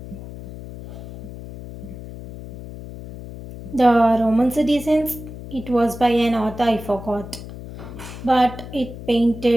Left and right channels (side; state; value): left; noise; hum, 13 dB below the sound